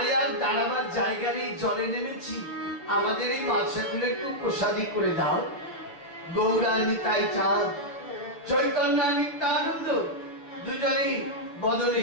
আর দাঁড়াবার জায়গা নেই, জলে নেমেছি, আমাদের এই মাছগুলো একটু প্রসাদী করে দাও। গৌরা নিতাই চাঁদ, চৈতন্য নিত্যানন্দ দুজনেই বদলে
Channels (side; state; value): right; late; 7.1 ms